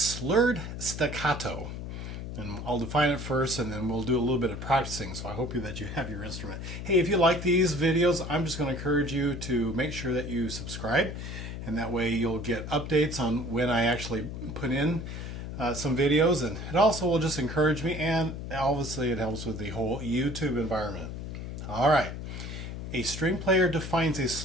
staccato. And I'll define it first and then we'll do a little bit of practicing, so I hope that you have your instrument. Hey, if you like these videos, I'm just going to encourage you to make sure that you subscribe, and that way you'll get updates on when I actually put in some videos, and it also will just encourage me, and obviously it helps with the whole YouTube environment. Alright, a string player defines a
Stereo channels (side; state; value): left; noise; hum, 7 dB below the sound